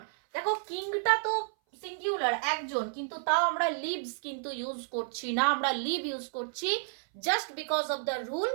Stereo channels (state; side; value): silent; left; 57 dB below the other